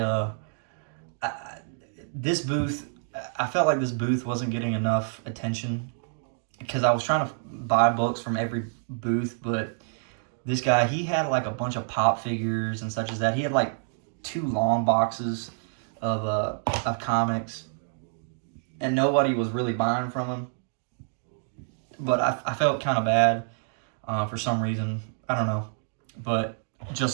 this booth, I felt like this booth wasn't getting enough attention, because I was trying to buy books from every booth, but this guy, he had like a bunch of pop figures and such as that. He had like 2 long boxes of comics, and nobody was really buying from him. But I felt kind of bad for some reason. I don't know. But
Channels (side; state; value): left; silent; digital silence